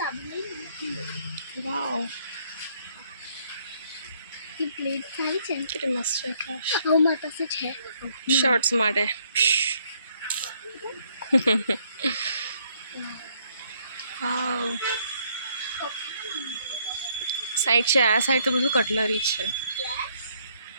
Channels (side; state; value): both; inverted; correlation -0.68